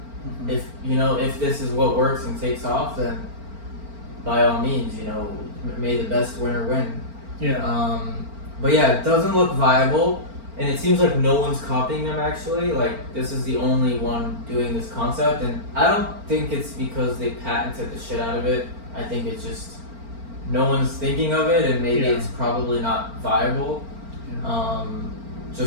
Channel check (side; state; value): left; late; 4.4 ms